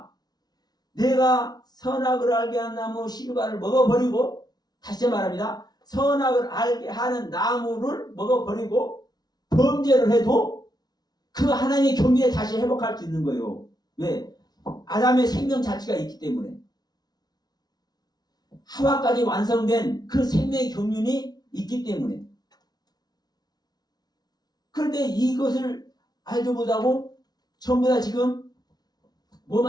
내가 선악을 알게 한 나무 실과를 먹어버리고, 다시 말합니다. 선악을 알게 하는 나무를 먹어버리고 범죄를 해도 그 하나님의 경륜에 다시 회복할 수 있는 거예요. 왜? 아담의 생명 자체가 있기 때문에. 하와까지 완성된 그 생명의 경륜이 있기 때문에. 그런데 이것을 알지 못하고 전부 다 지금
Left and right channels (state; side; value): late; right; 0.19 ms